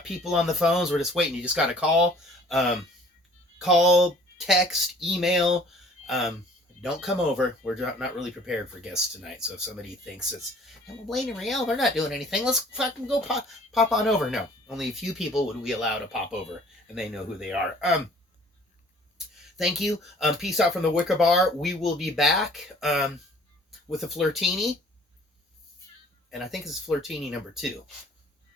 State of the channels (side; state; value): both; normal; correlation 0.53